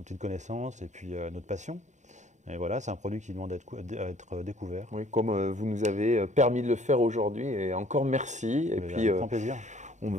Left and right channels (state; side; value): late; left; 0.34 ms